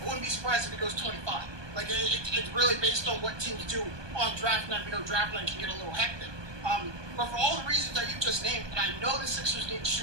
I wouldn't be surprised if he goes 25. Like, it's really based on what teams do on draft night. Draft night can get a little hectic. But for all the reasons that you just named, and I know the Sixers need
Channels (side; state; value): left; late; 1.2 ms